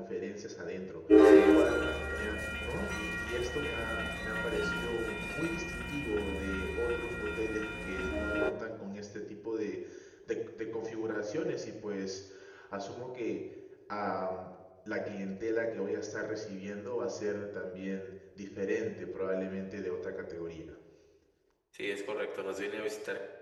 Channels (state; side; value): identical; both; correlation 1.00